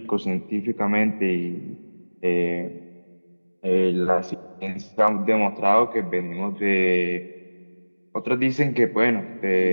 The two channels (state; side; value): inverted; both; correlation -1.00